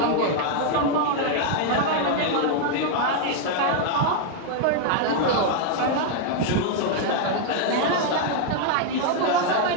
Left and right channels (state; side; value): different; both; correlation 0.00